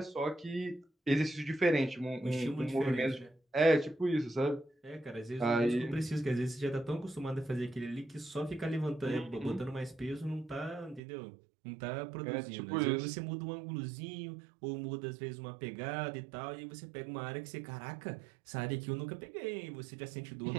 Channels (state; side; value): drops out; left; at 11.0 s